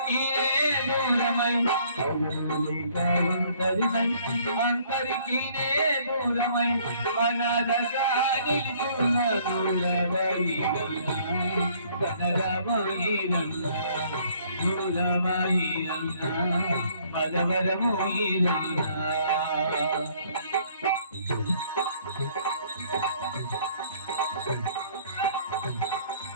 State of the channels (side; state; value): both; inverted; correlation -0.60